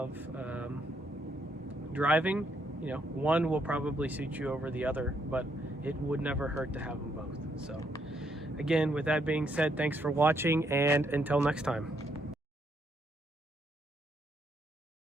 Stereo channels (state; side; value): normal; both; correlation 0.74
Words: driving, you know, one will probably suit you over the other, but it would never hurt to have them both. So again, with that being said, thanks for watching, and until next time.